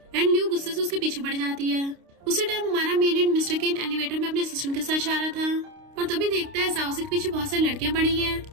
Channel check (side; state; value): left; late; 29 ms